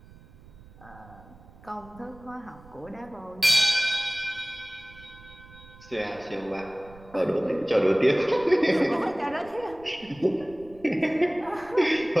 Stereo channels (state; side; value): noise; right; rumble, 22 dB below the sound